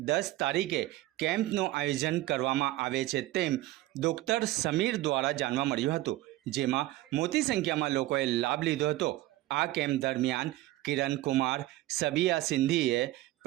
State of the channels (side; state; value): left; quieter; 16.8 dB